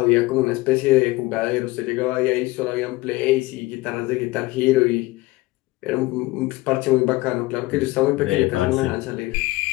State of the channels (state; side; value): quieter; right; 20.3 dB